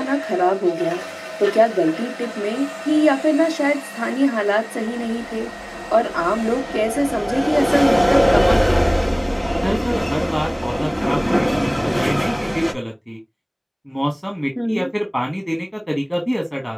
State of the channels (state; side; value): identical; both; correlation 1.00